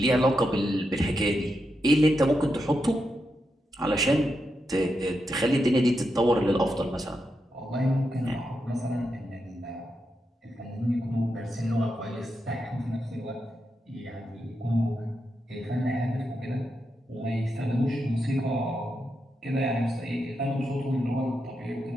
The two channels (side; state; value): both; normal; correlation 0.85